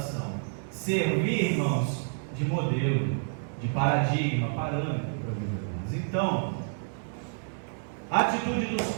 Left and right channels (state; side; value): silent; left; digital silence